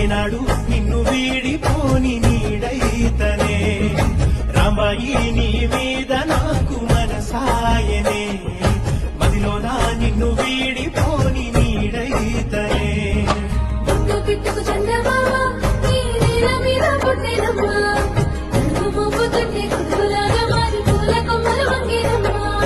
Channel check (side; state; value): both; identical; correlation 1.00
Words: నిన్ను వీడిపోని నీడైతనే రాంబాయి నీ మీద నాకు మనసాయనే మదిలోనా నిన్ను వీడిపోని నీడైతనే పిట్టుకు చందమామ నీ నీల మీద పుట్టినమ్మా నన్ను మోపుతుంటే కురులాగా మారి పూల కొమ్మలు వంగినమ్మా